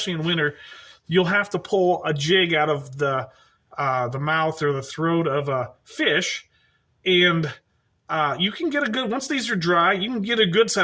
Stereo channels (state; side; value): identical; both; correlation 1.00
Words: in winter, you'll have to pull a jig out of the the mouth or the throat of a fish, and you can get a good, once these are dry, you can get a good